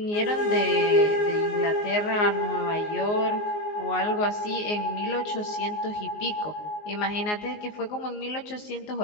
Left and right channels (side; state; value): right; late; 19 ms